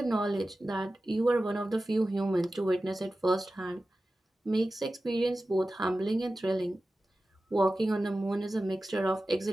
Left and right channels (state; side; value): normal; both; correlation 0.95